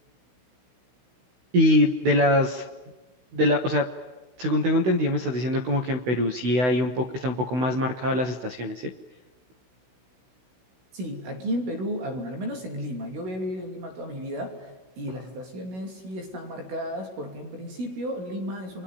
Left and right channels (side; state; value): left; late; 16 ms